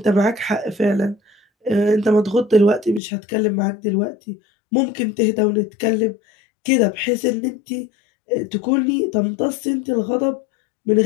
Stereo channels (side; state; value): right; drops out; at 3.0 s